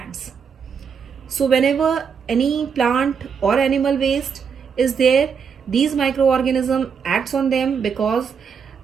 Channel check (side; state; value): left; quieter; 6.5 dB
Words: So whenever any plant or animal waste is there, these microorganism acts on them because